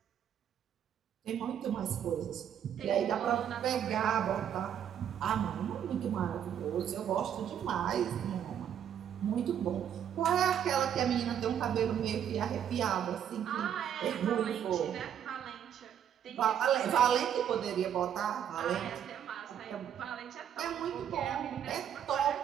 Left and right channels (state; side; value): quieter; left; 9.3 dB